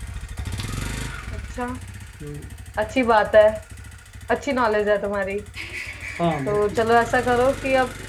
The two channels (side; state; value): both; identical; correlation 1.00